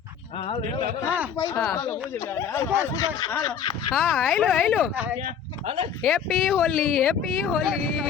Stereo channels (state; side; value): quieter; right; 7.7 dB